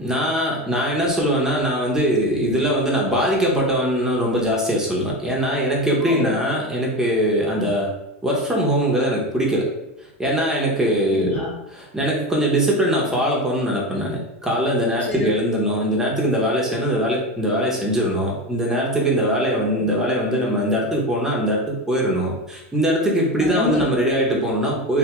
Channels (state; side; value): normal; both; correlation 0.23